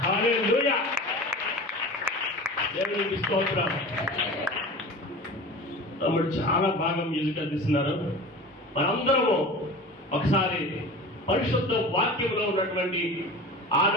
హల్లెలూయా, దేవునికి స్తోత్రం. తమ్ముడు చాలా బాగా మ్యూజిక్ అందిస్తున్నారు. మనందరము ఒకసారి పరిశుద్ధ వాక్యంలో ఉన్నటువంటి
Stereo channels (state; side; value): normal; both; correlation 0.35